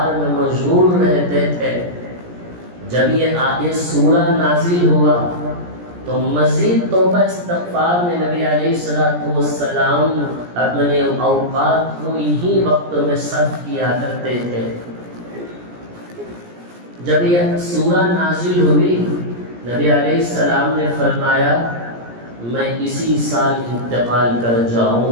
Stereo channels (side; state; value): left; late; 17 ms